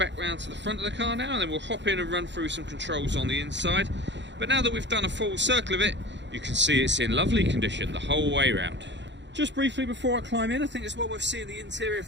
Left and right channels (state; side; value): late; left; 0.52 ms